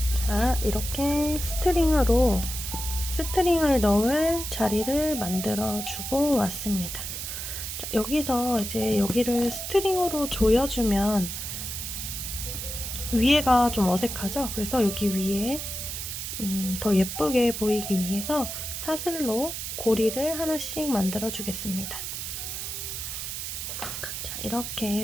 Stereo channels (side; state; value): right; noise; hiss, 5 dB below the sound